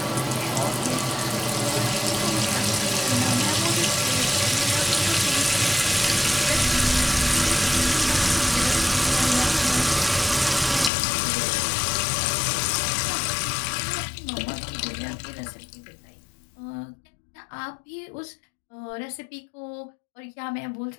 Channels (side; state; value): right; drops out; at 10.9 s